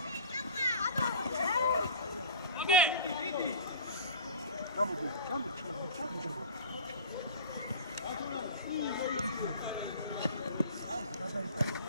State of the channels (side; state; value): both; inverted; correlation -0.39